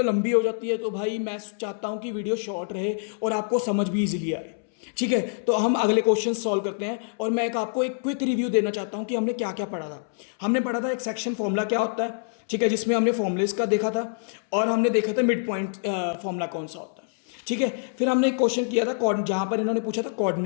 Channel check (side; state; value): right; silent; 61 dB below the other